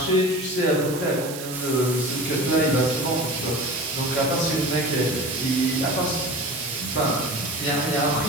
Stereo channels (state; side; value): noise; right; hiss, 10 dB below the sound